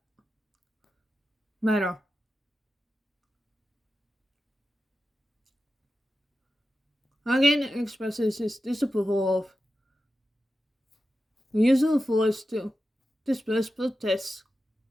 matter. Again expresses his disapproval of the use of force to disperse protests.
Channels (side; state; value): both; normal; correlation 0.92